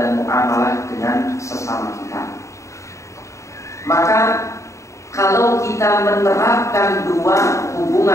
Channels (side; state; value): right; late; 0.14 ms